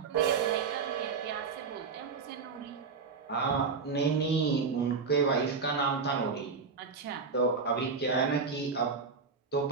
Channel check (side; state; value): left; quieter; 5.0 dB